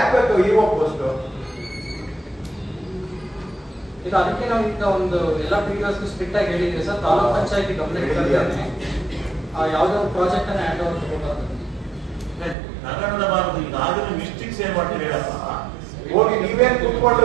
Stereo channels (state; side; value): drops out; left; at 12.6 s